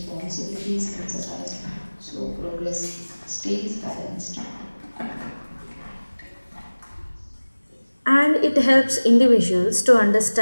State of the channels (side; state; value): both; inverted; correlation -1.00